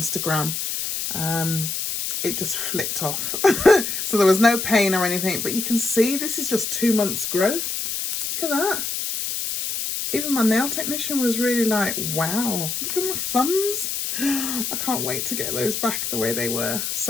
It just flicked off. So there was no pain or anything, but you can see this is just 2 months growth. Look at that. Even my nail technician was really like, wow, look at my thumbs. I can't wait to get those back the way they were.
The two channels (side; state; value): left; noise; hiss, 3 dB below the sound